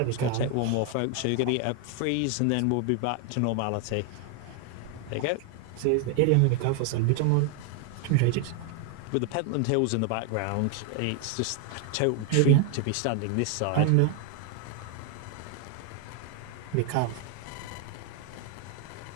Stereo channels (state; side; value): different; both; correlation 0.00